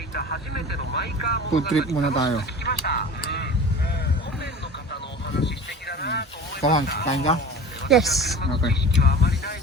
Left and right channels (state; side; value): normal; both; correlation 0.38